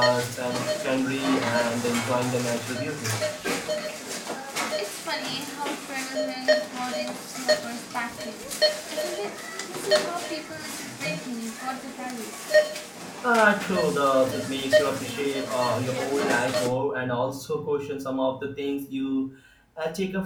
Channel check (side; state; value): both; identical; correlation 1.00